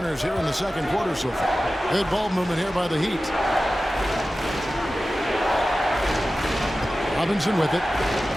here in the second quarter so far. Good ball movement here by the Heat. Robinson with it.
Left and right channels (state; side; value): normal; both; correlation 0.95